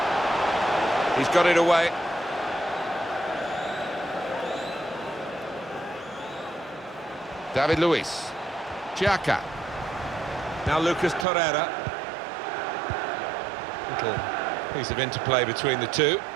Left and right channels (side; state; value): left; drops out; at 11.2 s